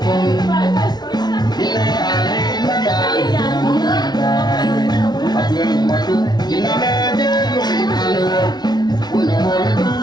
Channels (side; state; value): right; late; 0.20 ms